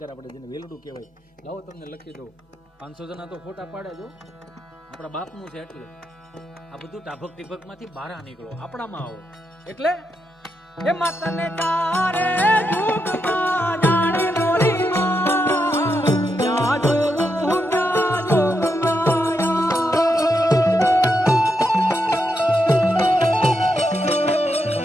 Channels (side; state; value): both; normal; correlation 0.83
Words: આપણે જેને વેલડું કહેવાય. લાવો તમને લખી દો, 500 જણા તો ફોટા પાડે જો, આપણા બાપનું છે. એટલે આ બધું ટાભક ટીભકમાંથી બહાર નીકળો, આપણામાં આવો. એટલે એ માતાને તારે જુગમાં જાણે મોરી માં જાજો